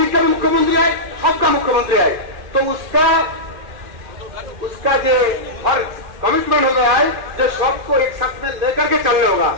का भी मुख्यमंत्री है, सबका मुख्यमंत्री है। तो उसका जो हर कमिटमेंट हो गया है जो सबको एक साथ में लेकर के चलने होगा।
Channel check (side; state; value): left; late; 2.1 ms